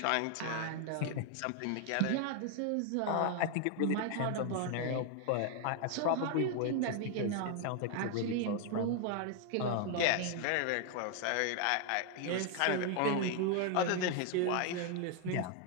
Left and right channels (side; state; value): both; different; correlation 0.01